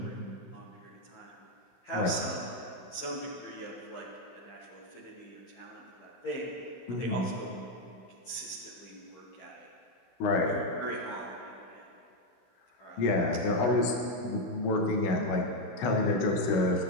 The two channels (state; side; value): late; right; 15 ms